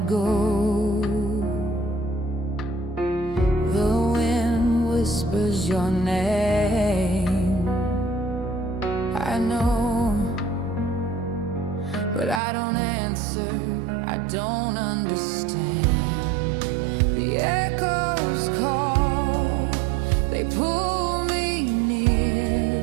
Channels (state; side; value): drops out; left; at 12.4 s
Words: go. The wind whispers your name, I know, but I don't answer, I don't understand. The echoes call, they pull me near.